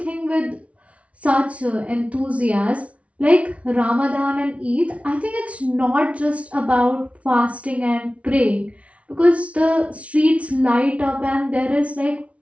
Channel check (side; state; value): left; late; 0.064 ms